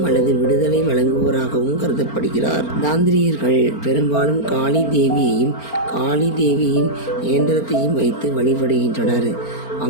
அல்லது விடுதலை வழங்குவோராகவும் கருதப்படுகிறார். தாந்திரியர்கள் பெரும்பாலும் காளி தேவியையும் காளி தேவியின் இயந்திரத்தையும் வைத்து வழிபடுகின்றனர்.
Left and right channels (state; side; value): late; right; 4.4 ms